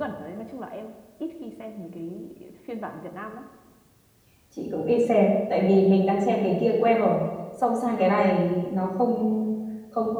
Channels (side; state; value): both; identical; correlation 1.00